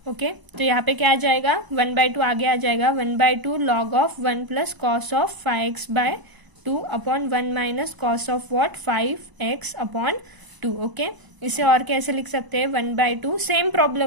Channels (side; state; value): left; late; 1.0 ms